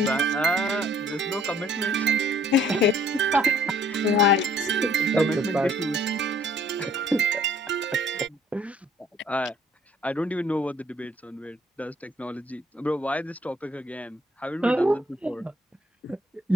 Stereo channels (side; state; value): both; normal; correlation 0.60